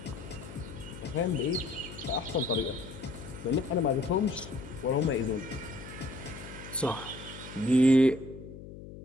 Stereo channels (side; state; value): left; noise; hum, 14 dB below the sound